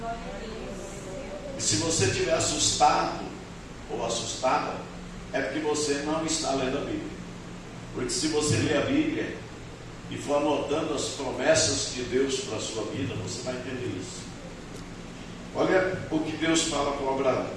E se você estiver assustado ou assustada, é porque você não está lendo a Bíblia. Porque se você ler a Bíblia e for anotando as promessas de Deus para a sua vida, você vai entender isso. Olha o que Deus fala com Abraão.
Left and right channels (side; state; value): both; identical; correlation 1.00